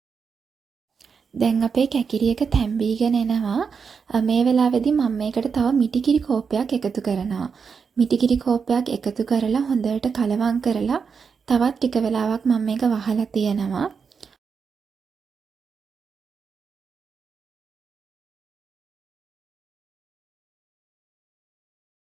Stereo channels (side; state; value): left; quieter; 5.9 dB